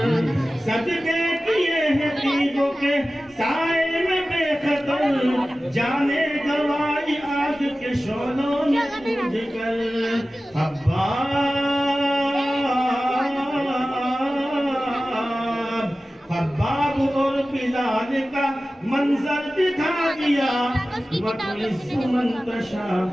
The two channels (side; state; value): both; normal; correlation 0.96